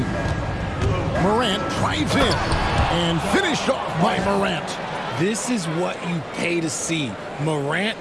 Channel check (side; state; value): both; identical; correlation 1.00